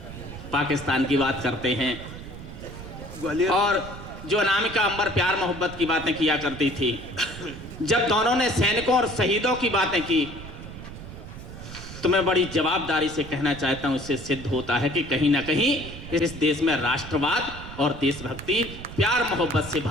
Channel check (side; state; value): right; noise; rumble, 12 dB below the sound